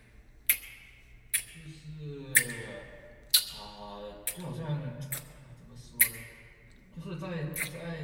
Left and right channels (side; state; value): both; identical; correlation 1.00